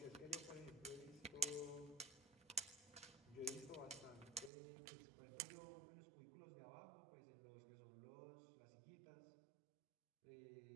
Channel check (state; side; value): drops out; left; at 4.5 s